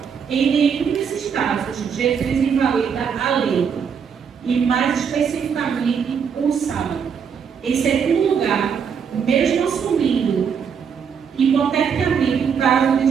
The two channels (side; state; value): left; quieter; 6.9 dB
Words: em nenhum desses casos Jesus invalida a lei, e mais especificamente o sábado. Em segundo lugar, mesmo assumindo hipoteticamente o caso